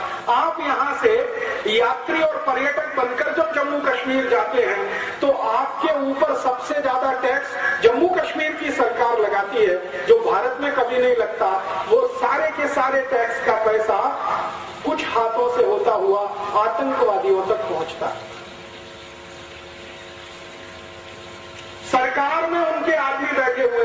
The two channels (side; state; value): both; identical; correlation 1.00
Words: आप यहां से यात्री और पर्यटक बनकर जब जम्मू कश्मीर जाते हैं तो आपके ऊपर सबसे ज्यादा टैक्स जम्मू कश्मीर की सरकार लगाती है, जो भारत में कभी नहीं लगता। वो सारे के सारे टैक्स का पैसा कुछ हाथों से होता हुआ आतंकवादियों तक पहुंचता है। सरकार में उनके आदमी बैठे हुए